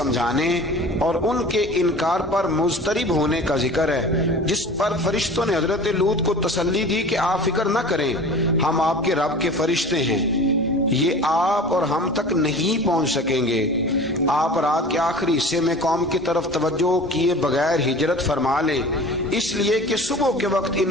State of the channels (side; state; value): both; normal; correlation 0.39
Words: اور ان کے انکار پر مضطرب ہونے کا ذکر ہے، جس پر فرشتوں نے حضرت لوط کو تسلی دی کہ آپ فکر نہ کریں، ہم آپ کے رب کے فرشتے ہیں، یہ آپ اور ہم تک نہیں پہنچ سکیں گے۔ آپ رات کے آخری حصے میں قوم کی طرف توجہ کیے بغیر ہجرت فرما لیں، اس لیے کہ صبح کے وقت